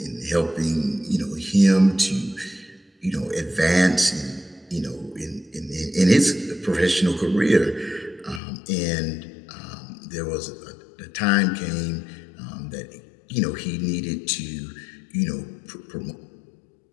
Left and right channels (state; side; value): drops out; right; at 8.4 s